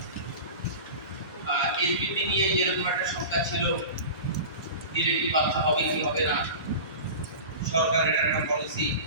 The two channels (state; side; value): inverted; both; correlation -0.33